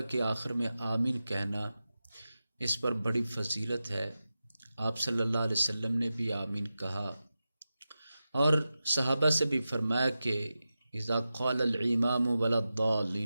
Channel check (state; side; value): inverted; both; correlation -0.93